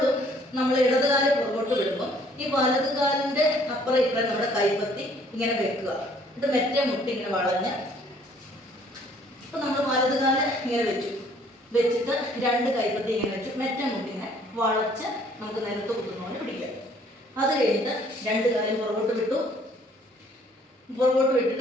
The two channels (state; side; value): normal; both; correlation 0.60